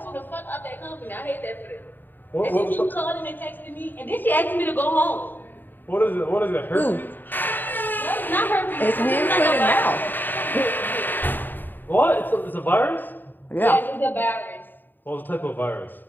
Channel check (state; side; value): late; right; 0.091 ms